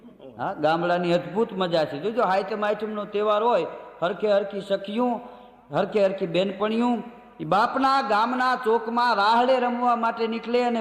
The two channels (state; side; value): identical; both; correlation 1.00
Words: હા, ગામડાની અદ્ભુત મજા છે. જોજો હાઈતમ આઈટમનો તહેવાર હોય, હરખે હરખી સખીયું, હરખે હરખી બેનપણીયું એ બાપના ગામના ચોકમાં રાહડે રમવા માટે નીકળે અને